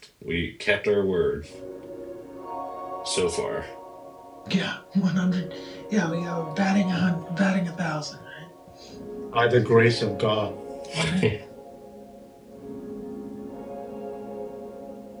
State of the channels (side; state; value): both; identical; correlation 1.00